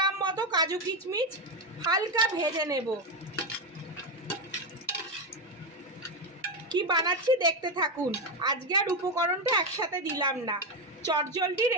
মতো কাজু কিশমিশ হালকা ভেজে নেব। কি বানাচ্ছি দেখতে থাকুন। আজকে আর উপকরণটা একসাথে দিলাম না, চটজলদি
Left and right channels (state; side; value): normal; both; correlation 0.10